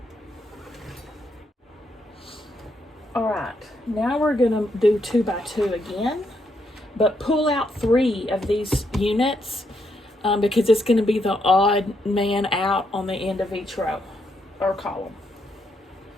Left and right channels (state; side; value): normal; both; correlation 0.77